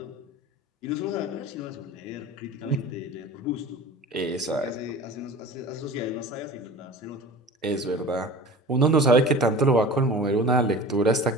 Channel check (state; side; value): normal; both; correlation 0.38